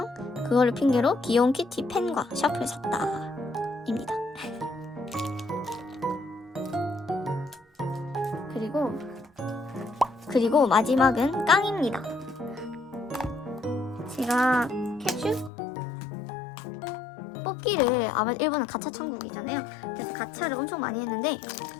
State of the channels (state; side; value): drops out; right; at 15.5 s